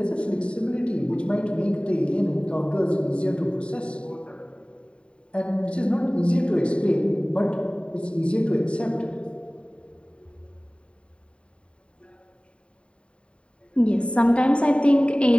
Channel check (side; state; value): right; late; 0.057 ms